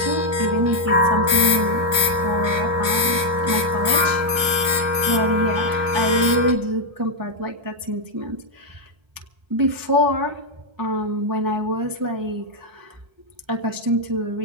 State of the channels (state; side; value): late; left; 1.3 ms